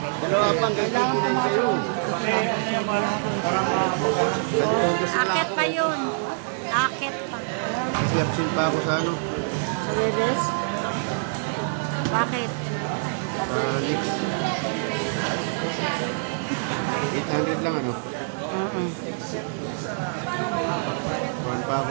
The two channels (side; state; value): left; silent; digital silence